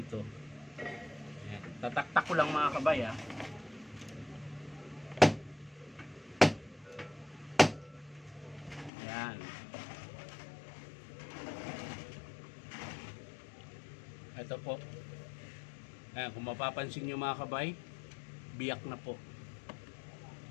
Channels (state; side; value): drops out; right; at 8.9 s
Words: Ayan. Tataktak ko lang mga kabay ha. Ayan. Ito po. Ayan, kung mapapansin nyo mga kabay, biyak na po.